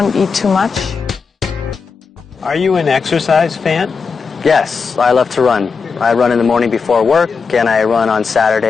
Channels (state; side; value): quieter; right; 5.3 dB